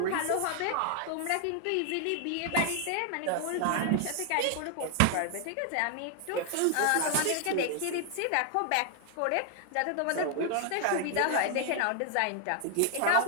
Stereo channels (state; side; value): different; both; correlation 0.00